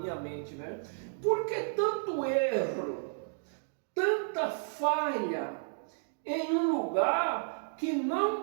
mente, né? Por que tanto erro, tanta falha em um lugar que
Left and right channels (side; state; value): left; silent; digital silence